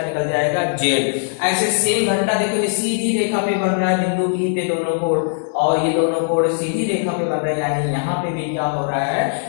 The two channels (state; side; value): silent; right; 66 dB below the other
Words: निकल जाएगा, z। ऐसे सेम घटना देखो, ये सीधी रेखा पे बन रहा है बिंदु P पे दोनों कोण, और ये दोनों कोण सीधी रेखा पे बन रहे हैं, यानी यहाँ पे भी क्या हो रहा है,